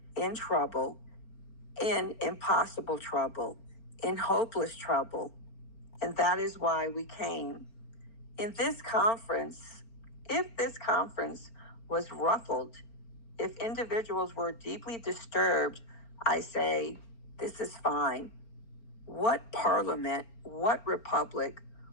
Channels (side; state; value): right; late; 4.4 ms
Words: in trouble, in impossible trouble, in hopeless trouble, and that is why we came. In this conference, if this conference was ruffled, if individuals were deeply disturbed, I say, this is fine. What parliament, what republic,